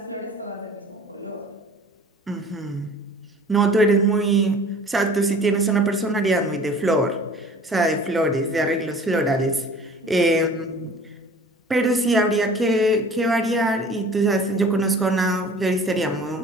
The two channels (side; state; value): both; normal; correlation 0.46